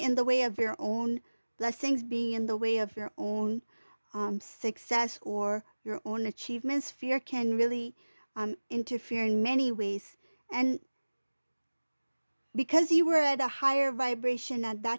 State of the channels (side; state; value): both; inverted; correlation -1.00